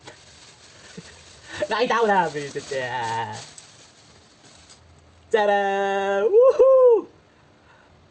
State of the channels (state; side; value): identical; both; correlation 1.00